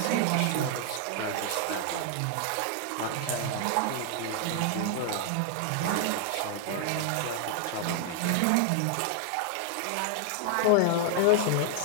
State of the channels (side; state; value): both; different; correlation 0.00